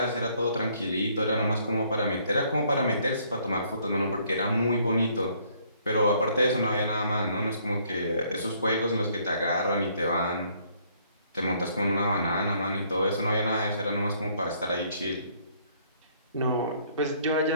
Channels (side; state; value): both; inverted; correlation -0.65